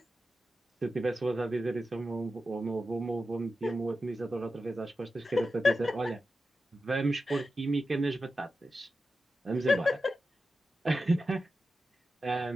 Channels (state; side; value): normal; both; correlation 0.91